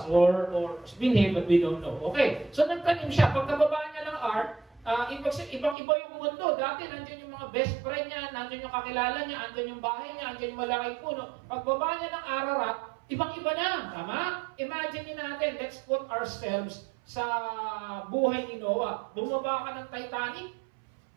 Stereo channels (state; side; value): drops out; left; at 5.8 s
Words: or binhi, but we don't know. Okay, so nagtanim siya. Pagkababa niya ng ark, ibang-iba yung mundo. Dati, nandiyan yung mga best friend niya, nandiyan yung kakilala niya, nandiyan yung bahay niya, nandiyan yung malaking puno. Pagbaba niya ng Ararat, ibang-iba na. Tama? Imagine natin, let's put ourselves sa buhay ni Noah. Bumaba ka ng Titanic,